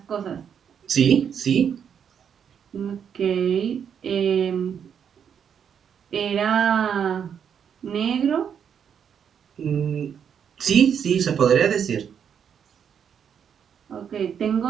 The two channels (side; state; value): left; quieter; 7.9 dB